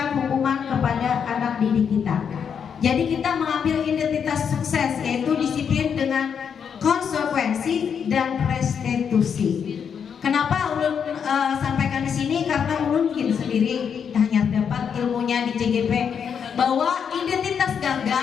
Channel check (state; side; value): quieter; right; 7.2 dB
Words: hukuman kepada anak didik kita. Jadi kita mengambil identitas sukses, yaitu disiplin dengan konsekuensi dan restitusi. Kenapa ulun sampaikan di sini? Karena ulun mungkin sendiri hanya dapat ilmunya di CGP bahwa identitas